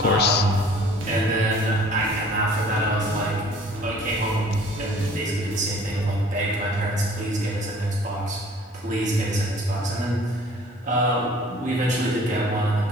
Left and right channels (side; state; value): both; normal; correlation 0.52